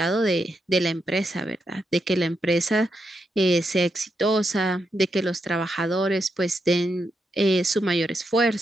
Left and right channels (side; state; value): both; normal; correlation 0.83